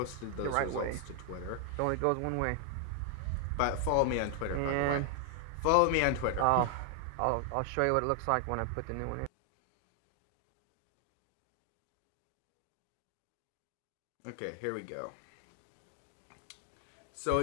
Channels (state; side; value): different; both; correlation 0.00